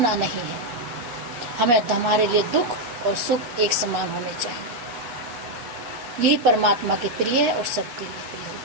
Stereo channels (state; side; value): late; left; 8.2 ms